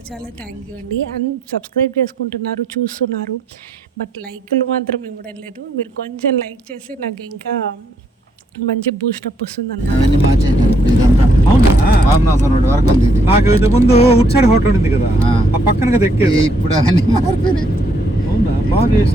చాలా థ్యాంక్ యూ అండి. అండ్ సబ్స్క్రైబ్ చేసుకుంటున్నారు, చూస్తున్నారు, బట్ లైక్లు మాత్రం ఇవ్వడం లేదు. మీరు కొంచెం లైక్ చేసి నాకు ఇంకా మంచి బూస్టప్ వస్తుంది అన్నమాట. నాకు ఇది ముందు ఉట్ సైడ్ హోటల్ ఉంది కదా, ఆ పక్కన కదా ఎక్కేది. ఇప్పుడు అవన్నీ మారిపోయినాయి. అవునా, బాగా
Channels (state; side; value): normal; both; correlation 0.72